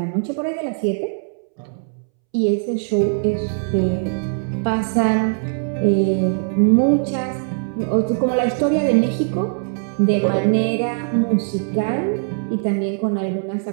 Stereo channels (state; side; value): silent; left; 65 dB below the other